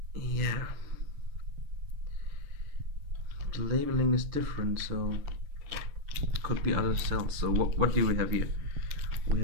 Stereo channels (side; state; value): left; late; 6.7 ms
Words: Yeah, the labeling is different, so could be other cells. So what do we have here? We